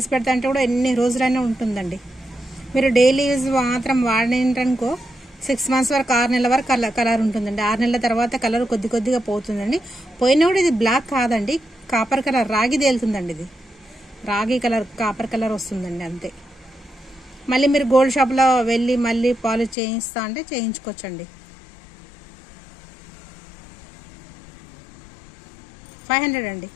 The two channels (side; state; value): right; drops out; at 19.8 s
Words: పెడతా అంటే కూడా ఎన్ని రోజులైనా ఉంటుందండి. మీరు డైలీ యూజ్ మాత్రం వాడిననుకో 6 months వరకు 6 నెలల వరకు కలర్ ఉంటుందండి. 6 నెలల తర్వాత కలర్ కొద్దిగా పోతుందండి. పోయినా కూడా ఇది బ్లాక్ కాదండి, కాపర్ కలర్, రాగి తేలుతుందండి. ఇది రాగి కలర్, కాపర్ కలర్ వస్తుందండి అంతే. మళ్ళీ మీరు గోల్డ్ షాప్లో వెళ్ళి మళ్ళీ పాలిష్ చేయిస్తా అంటే చేయించుకోవచ్చండి. 500 అండి.